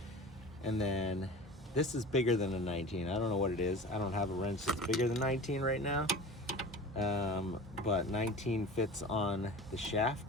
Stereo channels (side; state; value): both; normal; correlation 0.36